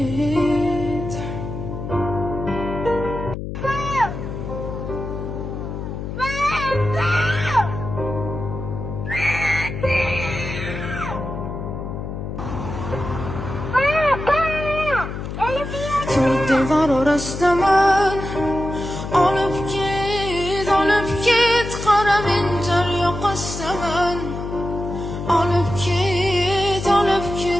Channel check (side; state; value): left; noise; hum, 6 dB below the sound